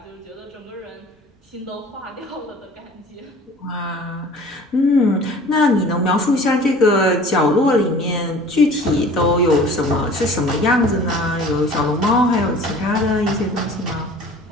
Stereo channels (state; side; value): normal; both; correlation 0.46